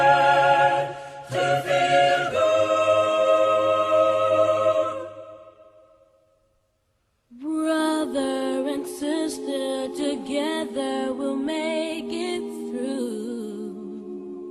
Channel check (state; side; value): identical; both; correlation 1.00